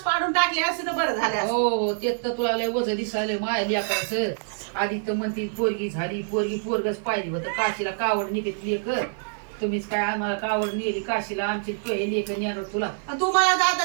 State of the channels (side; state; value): left; silent; 58 dB below the other